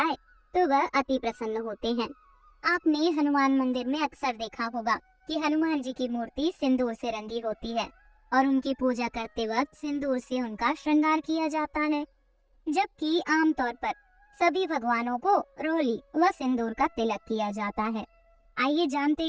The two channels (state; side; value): identical; both; correlation 1.00